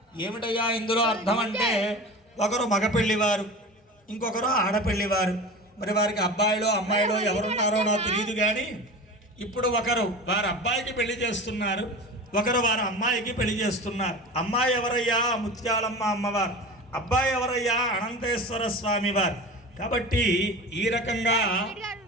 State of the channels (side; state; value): both; normal; correlation 0.33